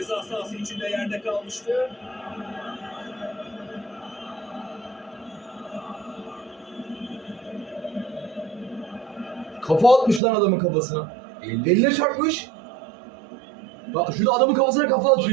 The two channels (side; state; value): left; drops out; at 10.2 s